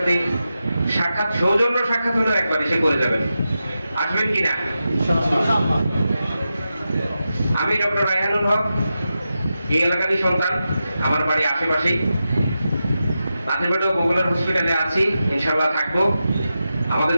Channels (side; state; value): both; inverted; correlation -0.90